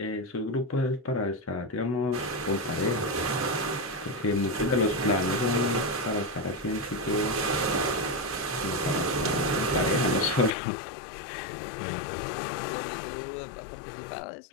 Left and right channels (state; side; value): drops out; right; at 10.6 s